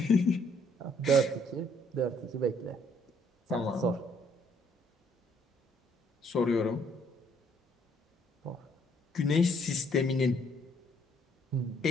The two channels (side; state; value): both; normal; correlation 0.65